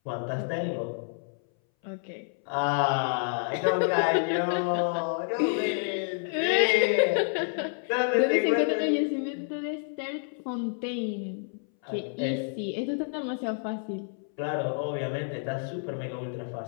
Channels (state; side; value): silent; right; 59 dB below the other